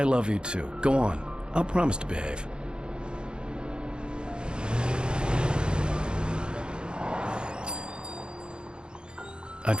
love you, too. Go on. I'll promise to behave. I'd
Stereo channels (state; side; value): late; left; 0.050 ms